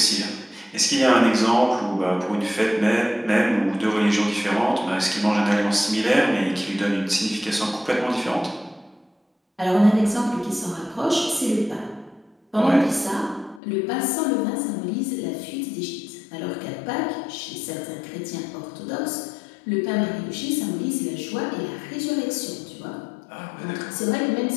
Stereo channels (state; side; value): drops out; right; at 13.6 s